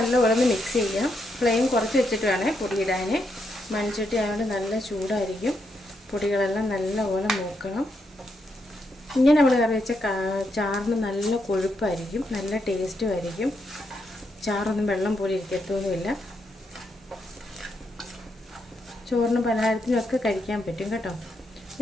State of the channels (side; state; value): both; normal; correlation 0.80